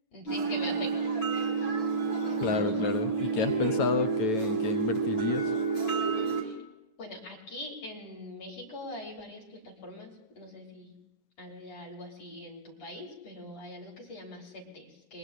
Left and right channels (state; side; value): late; right; 9.1 ms